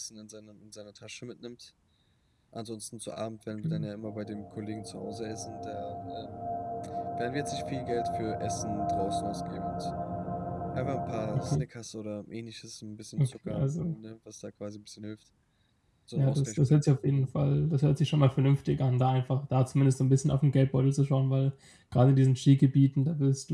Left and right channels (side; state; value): both; identical; correlation 1.00